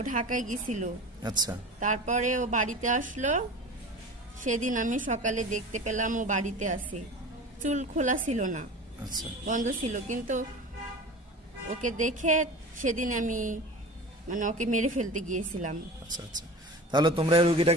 ঢাকায় গেছিল, আচ্ছা তারপরে ও বাড়িতে আসলো। সেদিন আমি সকালে দেখতে পেলাম ও বাড়িতে আছে, চুল খোলা ছিল না, আচ্ছা বন্ধ ছিল। কিন্তু ওকে দেখে সেদিন আমি মানে ওকে মেরে ফেলতে গিয়েছিলাম, আচ্ছা আচ্ছা। তাহলে তোমরা এই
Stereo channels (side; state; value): both; normal; correlation 0.35